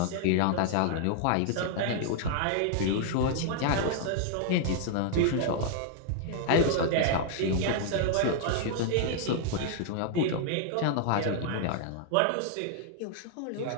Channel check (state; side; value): different; both; correlation 0.00